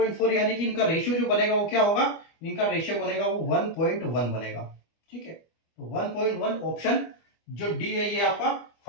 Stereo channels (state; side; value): late; right; 25 ms